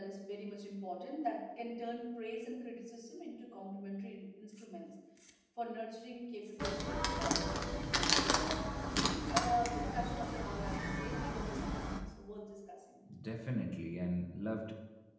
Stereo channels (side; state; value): both; identical; correlation 1.00